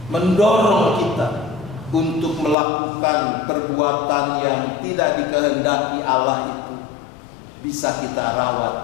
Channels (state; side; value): drops out; right; at 2.6 s